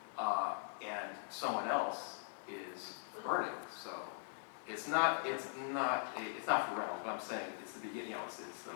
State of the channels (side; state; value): right; silent; 50 dB below the other